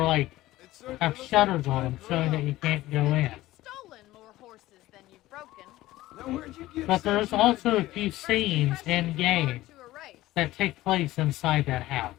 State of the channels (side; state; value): right; quieter; 16.6 dB